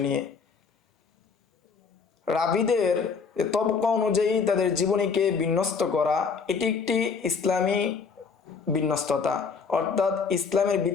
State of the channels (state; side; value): quieter; right; 5.5 dB